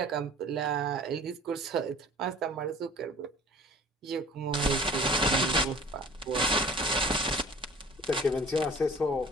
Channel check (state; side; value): normal; both; correlation 0.47